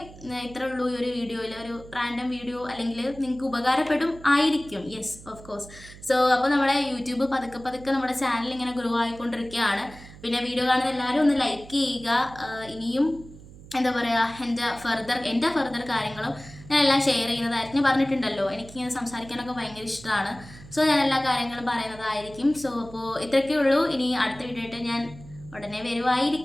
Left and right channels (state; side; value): noise; right; hum, 18 dB below the sound